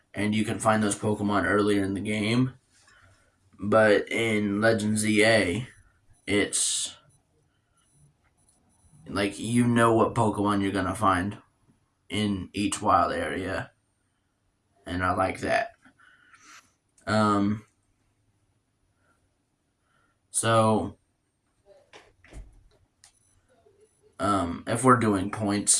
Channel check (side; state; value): both; identical; correlation 1.00